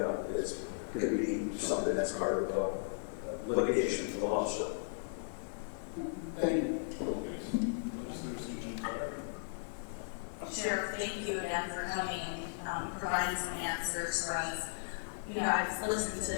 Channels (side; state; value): right; silent; 54 dB below the other